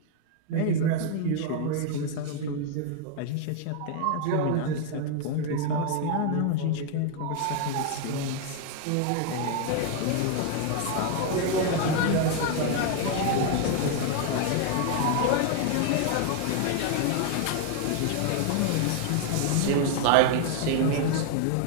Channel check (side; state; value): both; different; correlation 0.00